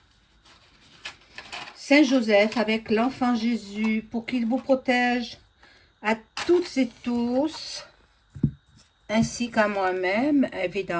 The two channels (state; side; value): identical; both; correlation 1.00